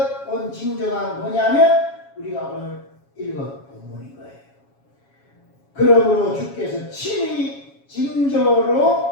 온 징조가 뭐냐면 우리가 오늘 읽은 본문인 거예요. 그러므로 주께서 친히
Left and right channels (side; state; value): right; late; 7.2 ms